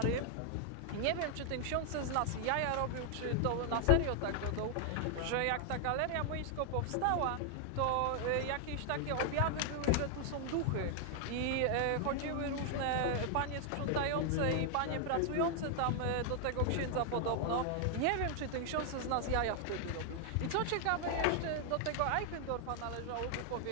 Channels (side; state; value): both; different; correlation 0.00